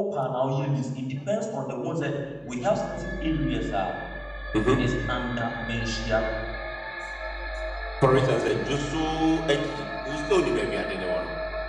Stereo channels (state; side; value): identical; both; correlation 1.00